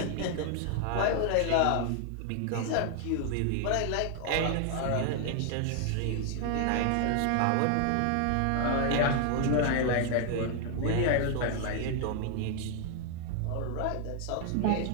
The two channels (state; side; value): different; both; correlation 0.00